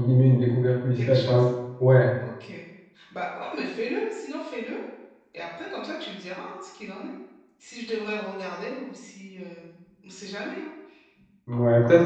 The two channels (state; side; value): identical; both; correlation 1.00